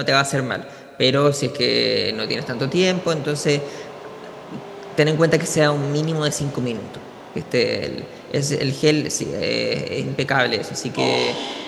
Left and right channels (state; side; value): identical; both; correlation 1.00